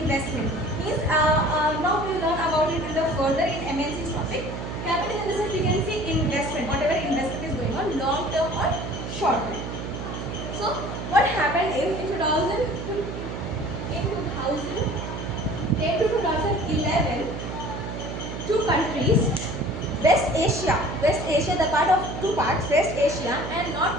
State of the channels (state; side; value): noise; right; hum, 6 dB below the sound